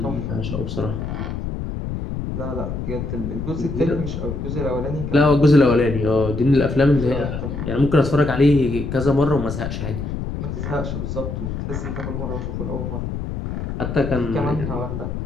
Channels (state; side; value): noise; left; rumble, 5 dB below the sound